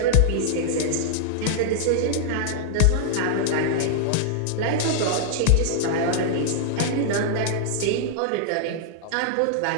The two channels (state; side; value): different; both; correlation -0.01